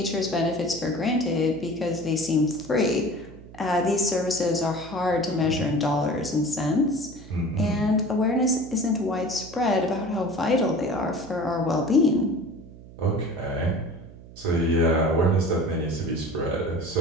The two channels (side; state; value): right; noise; hum, 18 dB below the sound